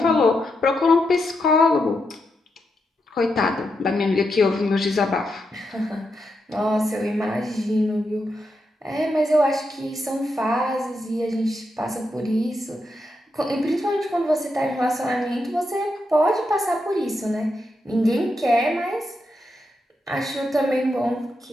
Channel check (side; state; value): both; normal; correlation 0.84